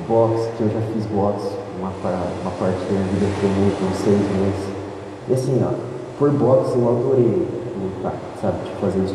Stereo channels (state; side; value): identical; both; correlation 1.00